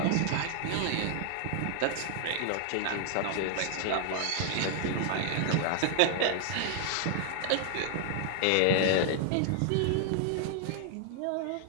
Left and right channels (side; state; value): both; different; correlation 0.00